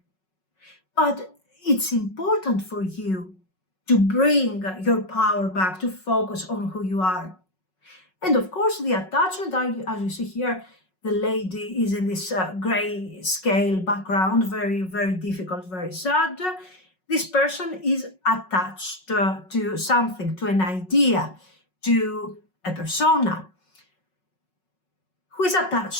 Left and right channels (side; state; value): right; late; 5.4 ms